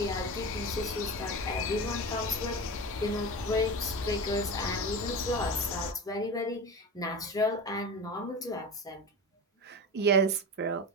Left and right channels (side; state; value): both; normal; correlation 0.27